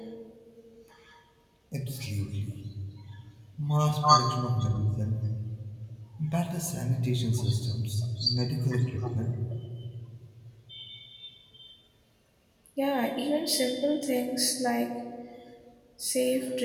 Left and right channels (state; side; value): identical; both; correlation 1.00